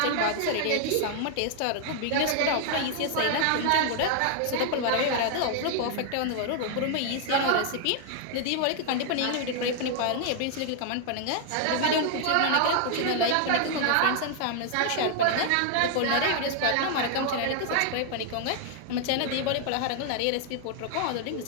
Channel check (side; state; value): both; different; correlation 0.00